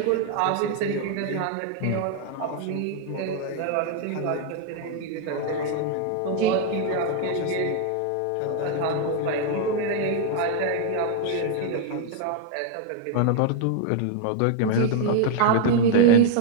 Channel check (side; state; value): both; different; correlation 0.00